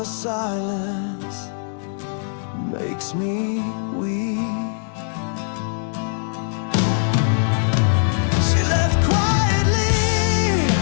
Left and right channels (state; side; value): silent; right; 65 dB below the other